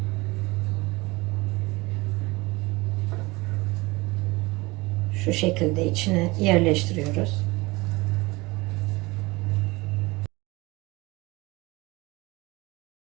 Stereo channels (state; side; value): quieter; left; 22.9 dB